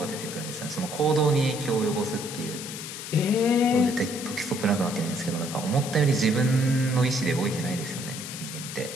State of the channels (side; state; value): left; noise; hiss, 9 dB below the sound